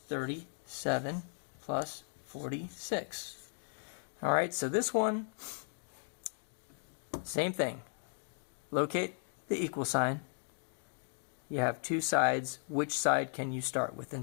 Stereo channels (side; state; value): right; silent; digital silence